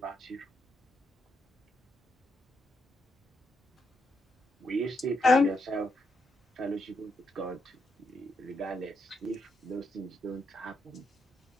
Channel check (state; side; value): normal; both; correlation 0.79